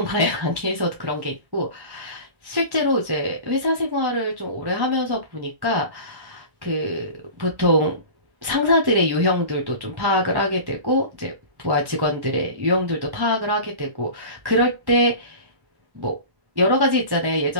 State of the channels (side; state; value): left; late; 1.1 ms